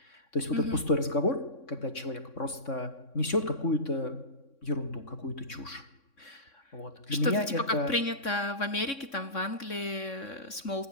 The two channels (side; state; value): right; late; 3.6 ms